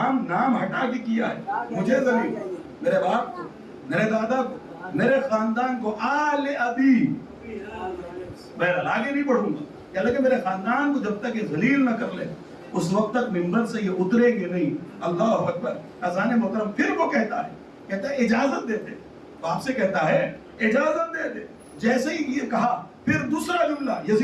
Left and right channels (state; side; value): identical; both; correlation 1.00